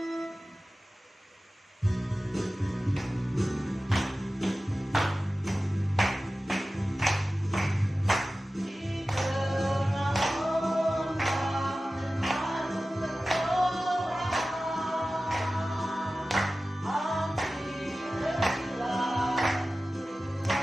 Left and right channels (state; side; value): normal; both; correlation 0.96